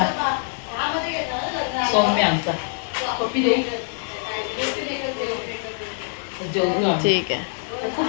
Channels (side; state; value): right; silent; digital silence